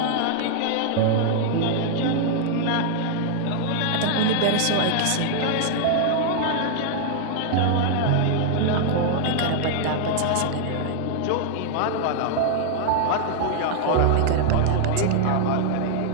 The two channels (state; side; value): different; both; correlation -0.01